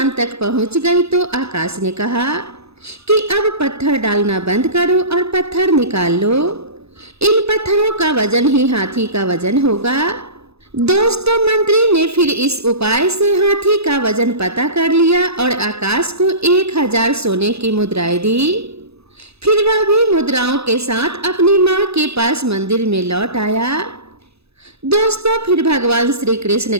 तक पहुंच गई तो आकाश ने कहा कि अब पत्थर डालना बंद करो और पत्थर निकाल लो। इन पत्थरों का वजन ही हाथी का वजन होगा। दोस्तों, मंत्री ने फिर इस उपाय से हाथी का वजन पता कर लिया और आकाश को 1000 सोने की मुद्राएं दी। फिर वह भी मुद्राओं के साथ अपनी मां के पास मंदिर में लौट आया। दोस्तों, फिर भगवान श्री कृष्ण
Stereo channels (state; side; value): late; left; 0.79 ms